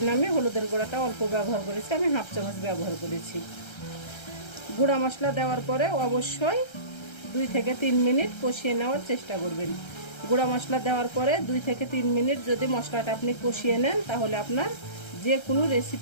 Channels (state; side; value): late; right; 1.3 ms